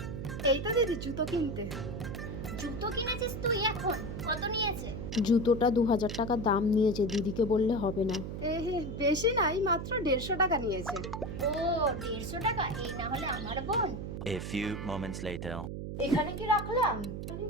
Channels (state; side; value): noise; right; hum, 6 dB below the sound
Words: এই তো দিদি জুতো কিনতে। জুতো কিনেছিস তুই এখন? কত নিয়েছে? জুতোটা 2000 টাকা দাম নিয়েছে, দিদিকে বললে হবে না। হে, বেশি নাই, মাত্র 150 টাকা নিয়েছে। ও, 150 টাকা? এই না হলে আমার বোন। A few moments later. এখানে কি রাখলাম? এখানে